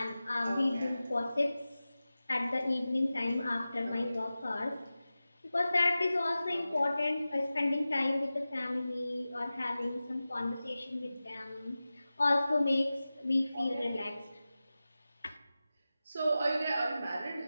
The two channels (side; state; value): both; inverted; correlation -0.95